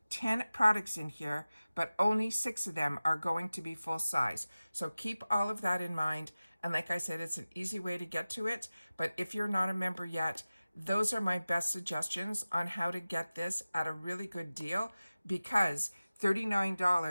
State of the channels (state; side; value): inverted; both; correlation -0.97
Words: 10 products in here, but only 6 of them are going to be full size. So keep all of that in mind. And like I said, it's an easy way to get to it. But if you're not a member yet, those are my best suggestions on how to get this at a really good deal, because